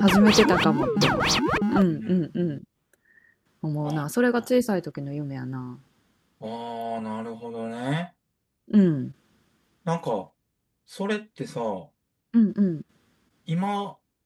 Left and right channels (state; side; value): identical; both; correlation 1.00